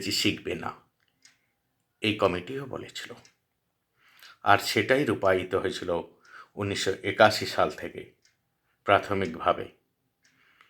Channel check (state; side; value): identical; both; correlation 1.00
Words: শিখবে না। এই কমিটিও বলেছিল। আর সেটাই রূপায়িত হয়েছিল 1981 সাল থেকে। প্রাথমিকভাবে